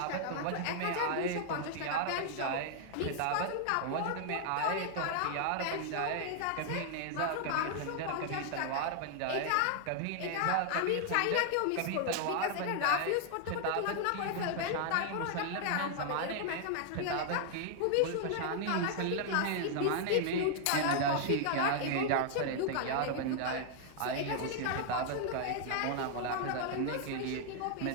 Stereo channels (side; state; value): both; different; correlation 0.00